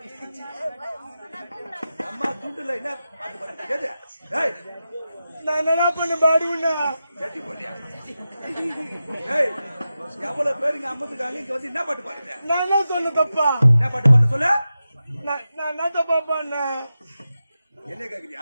எவ்வளவு பேருங்க அம்மத்துக்காங்க இங்க வந்து என்ன பாட்டு பாருங்க? நான் என்ன சொன்ன தப்பா? என்ன பாட்டு பாட சொல்ல? நான் என்ன தப்பா பண்ண? என்ன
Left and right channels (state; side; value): inverted; both; correlation -0.92